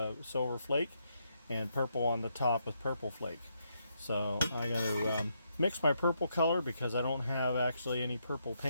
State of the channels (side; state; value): both; inverted; correlation -0.78